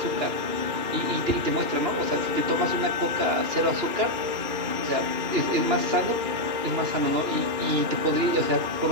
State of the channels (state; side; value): late; left; 2.4 ms